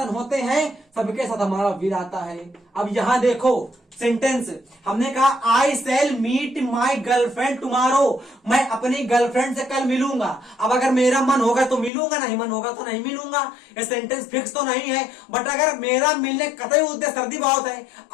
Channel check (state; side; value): drops out; right; at 11.9 s